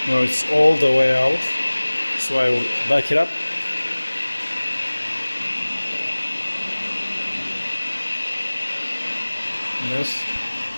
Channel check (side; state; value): both; inverted; correlation -1.00